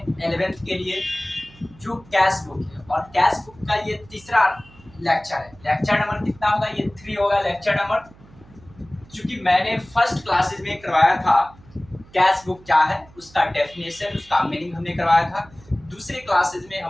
11th के लिए जो कैश बुक है और कैश बुक का ये तीसरा लेक्चर है। लेक्चर नंबर कितना होगा? ये 3 होगा लेक्चर नंबर। क्योंकि मैंने फर्स्ट क्लासेस में करवाया था कैश बुक क्या है, उसका डेफिनेशन, उसका मीनिंग हमने करवाया था। दूसरे क्लासेस में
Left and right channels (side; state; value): right; noise; hum, 24 dB below the sound